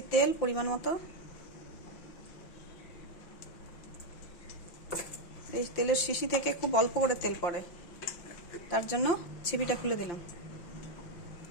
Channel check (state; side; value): late; right; 5.7 ms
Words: তেল পরিমাণ মতো। এই তেলের শিশি থেকে খুব অল্প করে তেল পড়ে, তার জন্য ছিপিটা খুলে দিলাম।